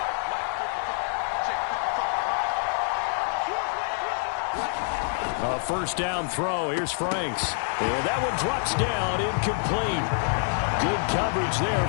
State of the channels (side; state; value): right; silent; 61 dB below the other